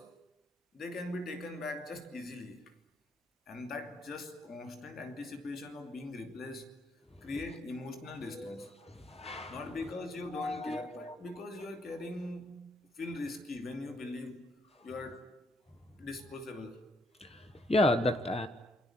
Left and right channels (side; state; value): both; normal; correlation 0.72